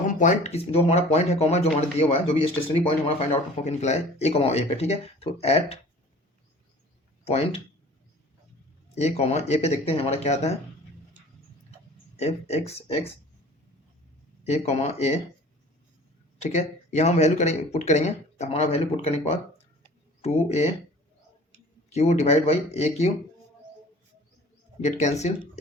हम पॉइंट जो हमारा पॉइंट है कॉमा जो हमारे दिया हुआ है, जो भी स्टेशनरी पॉइंट हमारा फाइंड आउट होकर निकला है ए कॉमा ए पे, ठीक है। तो एट पॉइंट ए कॉमा ए पे देखते हैं हमारा क्या आता है, एफ एक्स ए कॉमा ए, ठीक है। यहाँ हम वैल्यू करेंगे, पुट करेंगे, तो हमारा वैल्यू पुट करने के बाद 2a Q divide by A Q get cancel,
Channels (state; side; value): normal; both; correlation 0.46